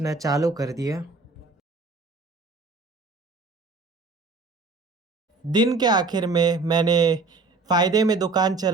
चालू कर दिया। दिन के आखिर में मैंने फ़ायदे में दुकान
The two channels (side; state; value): left; quieter; 3.8 dB